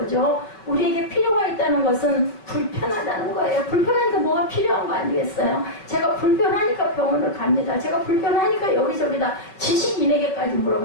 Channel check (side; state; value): right; late; 5.2 ms